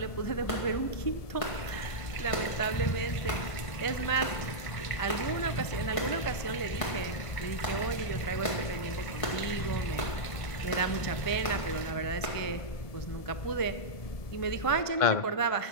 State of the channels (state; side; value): late; right; 1.5 ms